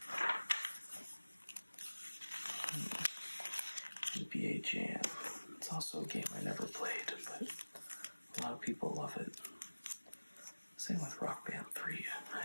NBA Jam. It's also a game I never played, but a lot of people love it. Same with Rock Band 3.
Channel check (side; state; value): both; inverted; correlation -1.00